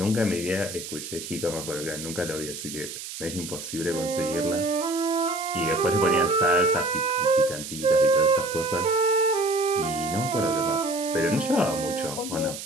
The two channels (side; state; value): right; noise; hiss, 9 dB below the sound